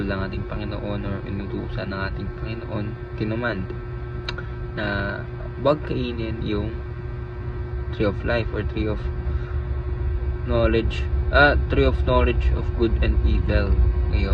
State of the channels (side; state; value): both; identical; correlation 1.00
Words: ng ating Panginoon or inutusan ng ating Panginoon, kinumand na huwag kainin yung tree of life or tree of knowledge of good and evil.